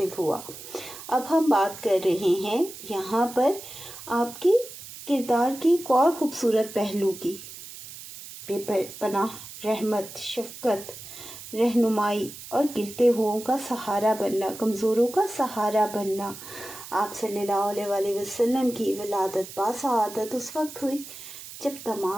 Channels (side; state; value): right; noise; hiss, 14 dB below the sound